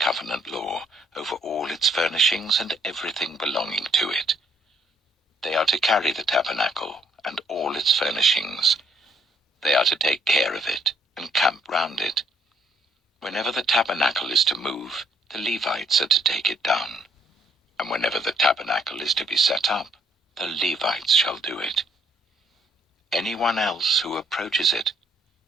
law, over all its furnishings and everything belonging to it. They are to carry the tabernacle and all its furnishings. They are to take care of it and camp round it. Whenever the tabernacle is to move, the Levites are to take it down. And whenever the tabernacle is to be set up, the Levites shall do it. Anyone else who approaches it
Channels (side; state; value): both; normal; correlation 0.67